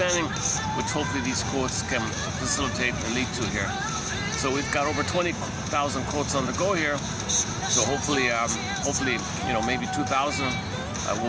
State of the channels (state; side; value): identical; both; correlation 1.00